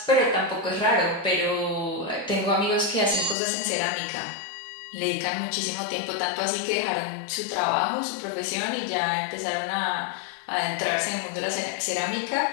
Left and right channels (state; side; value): drops out; right; at 3.4 s